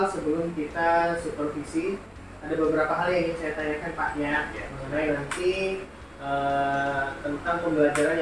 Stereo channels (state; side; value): identical; both; correlation 1.00